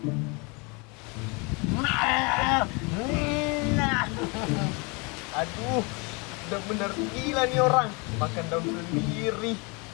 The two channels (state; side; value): quieter; right; 30.2 dB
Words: Aduh, udah bener gila nih orang. Makan daun sendiri.